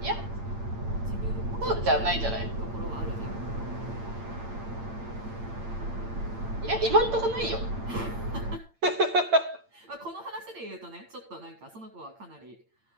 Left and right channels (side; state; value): left; late; 8.8 ms